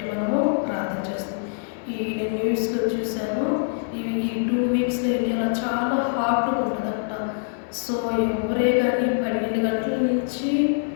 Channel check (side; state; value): right; silent; 62 dB below the other